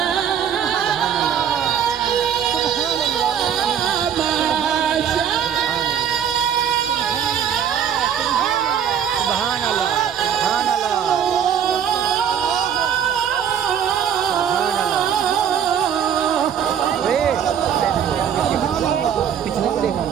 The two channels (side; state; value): left; quieter; 8.5 dB